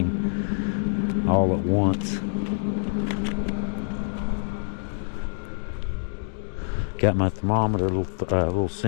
all at once. Got my thermometer, little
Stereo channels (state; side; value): silent; right; digital silence